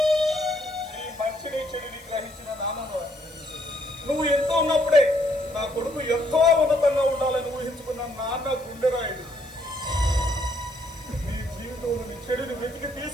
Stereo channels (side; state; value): left; noise; hiss, 23 dB below the sound